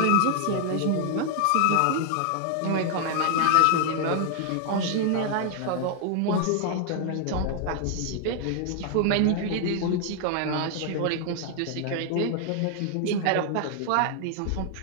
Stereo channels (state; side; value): different; both; correlation 0.00